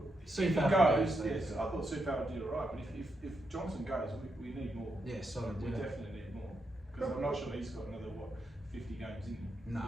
if he Soufal goes, goes, yes, I thought Soufal did all right. But if Johnson goes, we need more. Yeah, solid. We Yeah. definitely need more because I'm not sure he's got another 50 games in him No.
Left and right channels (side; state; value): both; normal; correlation 0.83